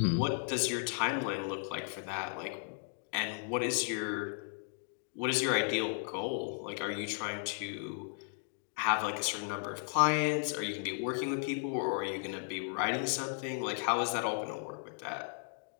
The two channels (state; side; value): silent; right; 54 dB below the other